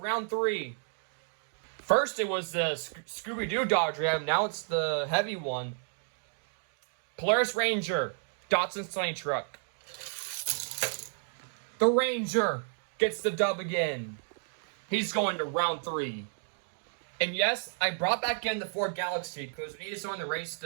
3. First, it was the Scooby-Doo Dodge Ram. Now it's the heavy one. Polaris Ranger, Datsun Sunny Truck. The Ranger gets the dub again. He's going to round 3. And yes, I brought back in the Ford Galaxy because we needed someone to race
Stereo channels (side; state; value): left; silent; 57 dB below the other